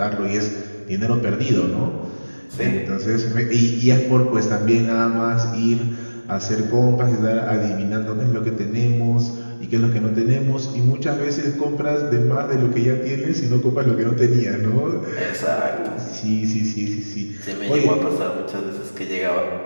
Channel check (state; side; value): inverted; both; correlation -1.00